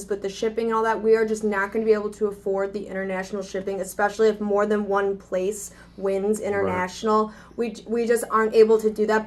but the shipping and all that, we are just not going to be able to afford the international shipping, especially if more than one place wins international. Right. We just aren't able to do that,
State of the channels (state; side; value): identical; both; correlation 1.00